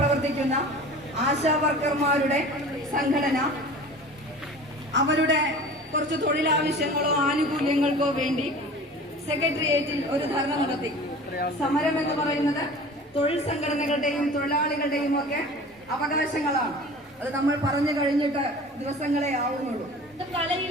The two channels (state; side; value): normal; both; correlation 0.40